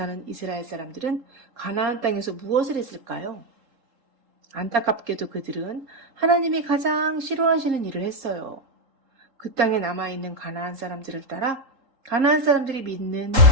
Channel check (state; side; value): late; left; 3.8 ms